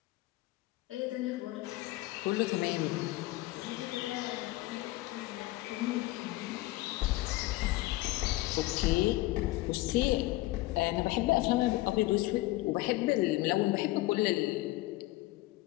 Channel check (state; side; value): quieter; right; 18.9 dB